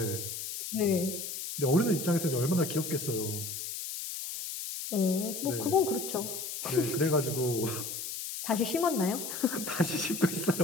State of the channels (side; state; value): left; noise; hiss, 6 dB below the sound